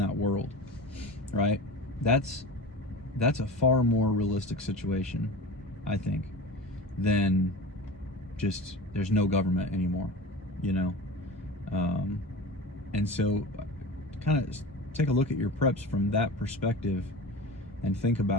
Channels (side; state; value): both; normal; correlation 0.32